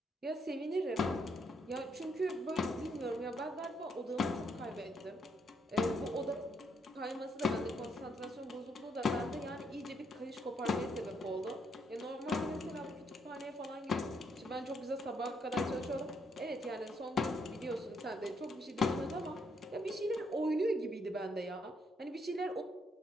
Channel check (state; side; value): normal; both; correlation 0.74